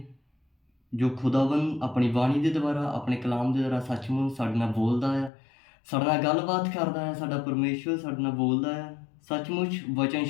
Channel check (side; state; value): right; drops out; at 5.3 s